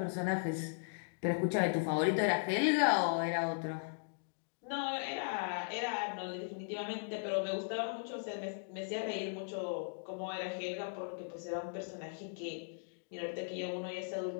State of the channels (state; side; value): silent; right; digital silence